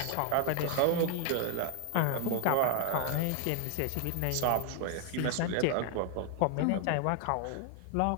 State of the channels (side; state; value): both; different; correlation 0.00